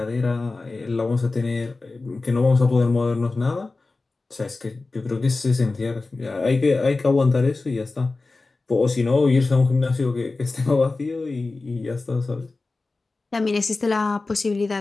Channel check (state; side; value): quieter; right; 3.5 dB